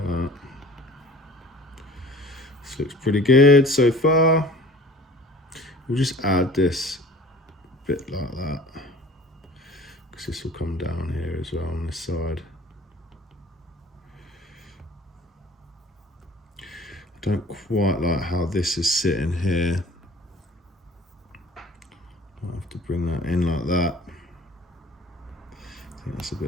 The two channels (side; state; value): both; normal; correlation 0.46